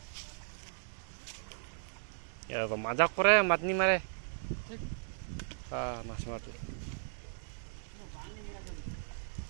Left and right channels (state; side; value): silent; left; digital silence